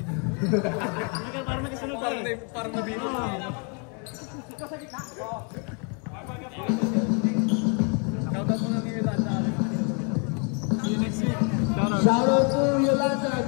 Parang may kasunod pa eh. Parang nabino. Shoutout mo nga kay Yolanda. See you next week. Shoutout to Yolanda.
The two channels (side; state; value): right; quieter; 37.1 dB